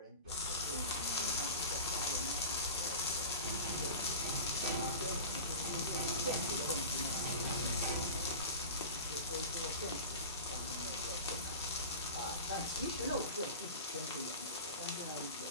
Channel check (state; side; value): inverted; both; correlation -0.31